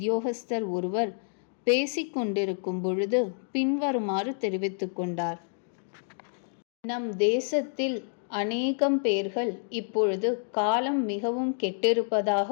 ஒருவர் பேசிக்கொண்டிருக்கும் பொழுது பின்வருமாறு தெரிவித்து கொண்டார். நம் தேசத்தில் அநேகம் பேர்கள் இப்பொழுது காலம் மிகவும்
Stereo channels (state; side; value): silent; right; digital silence